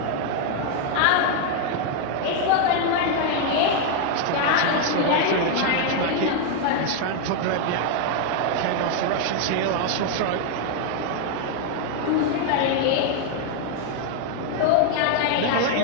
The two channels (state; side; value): different; both; correlation 0.00